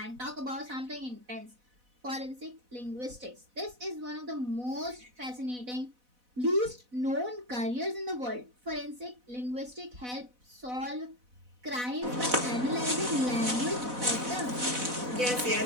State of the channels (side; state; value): left; late; 4.0 ms